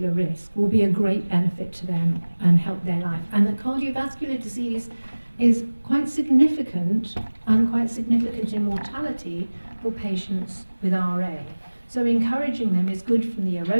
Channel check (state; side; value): inverted; both; correlation -1.00